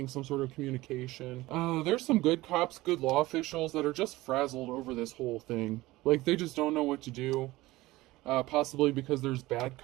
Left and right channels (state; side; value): quieter; left; 18.7 dB